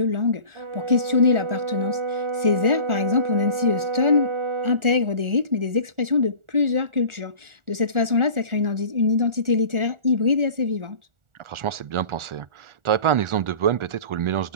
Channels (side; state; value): left; late; 1.4 ms